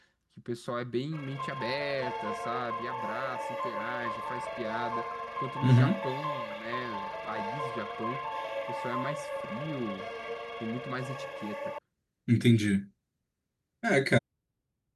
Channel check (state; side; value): identical; both; correlation 1.00